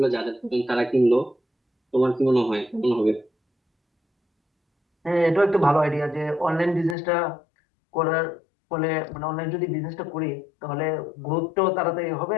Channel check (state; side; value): drops out; right; at 7.0 s